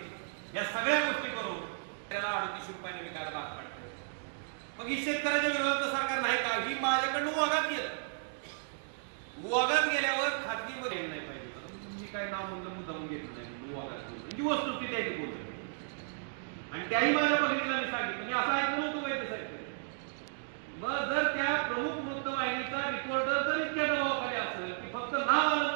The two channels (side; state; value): left; silent; digital silence